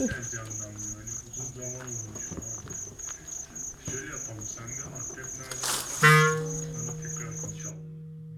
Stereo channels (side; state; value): both; identical; correlation 1.00